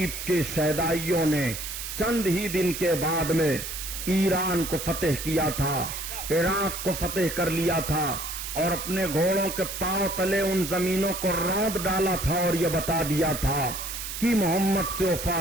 کے شہدائیوں نے چند ہی دن کے بعد میں ایران کو فتح کیا تھا، عراق کو فتح کر لیا تھا، اور اپنے گھوڑوں کے پاؤں تلے ان زمینوں کو روند ڈالا تھا اور یہ بتا دیا تھا کہ محمد سے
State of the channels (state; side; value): noise; right; hiss, 7 dB below the sound